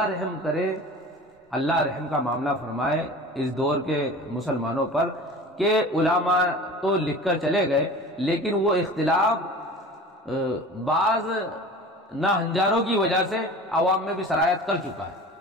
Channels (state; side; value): normal; both; correlation 0.39